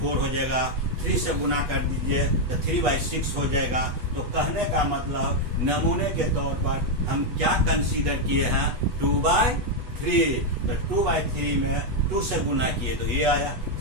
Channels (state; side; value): late; left; 8.2 ms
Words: हो जाएगा। 3 से गुना कर दीजिए तो 3/6 हो जाएगा। तो कहने का मतलब नमूने के तौर पर हम क्या कंसीडर किए हैं, 2/3। तो 2/3 में 2 से गुना किए तो ये आया,